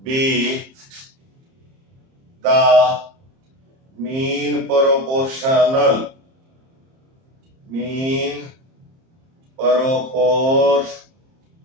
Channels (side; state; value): left; late; 30 ms